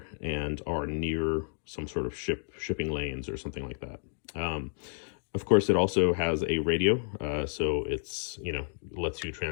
and are near some sort of shipping lanes or something like that. Of course, it also has a radio, so it's, lets you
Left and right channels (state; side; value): silent; right; digital silence